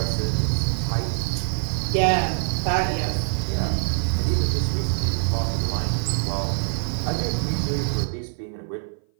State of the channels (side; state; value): left; silent; 57 dB below the other